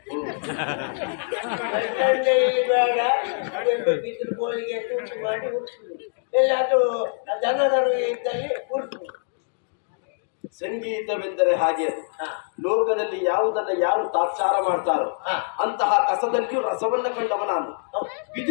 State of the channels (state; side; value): silent; right; digital silence